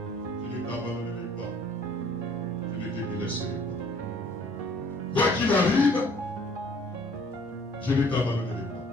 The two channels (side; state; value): both; normal; correlation 0.57